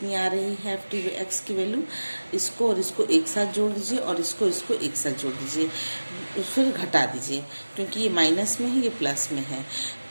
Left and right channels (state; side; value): inverted; both; correlation -1.00